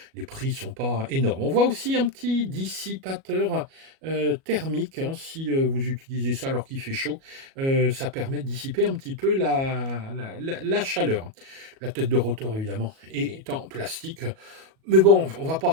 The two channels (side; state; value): left; late; 37 ms